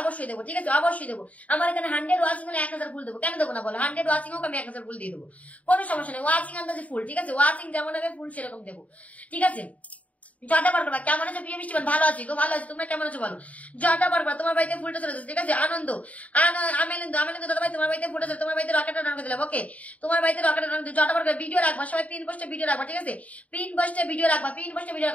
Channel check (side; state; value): right; late; 0.069 ms